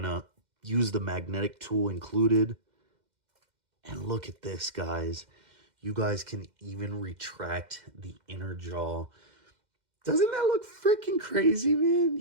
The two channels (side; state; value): left; late; 2.1 ms